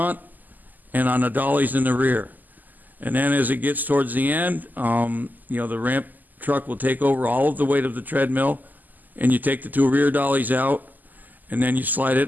and on the dollies in the rear. And then as it gets towards the end, the ramp truck will take over all of the weight of the treadmill, and you take the two rear dollies out, and then you slide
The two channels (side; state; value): left; late; 0.084 ms